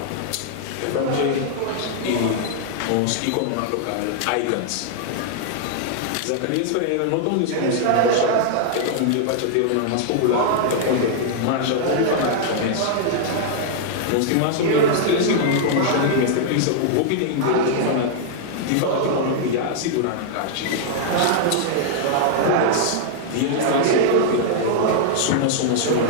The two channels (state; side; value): different; both; correlation -0.01